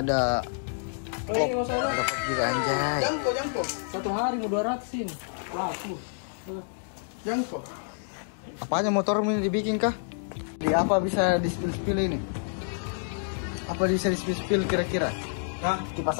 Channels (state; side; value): silent; right; digital silence